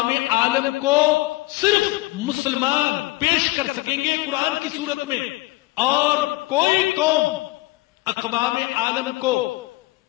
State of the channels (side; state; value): right; quieter; 21.0 dB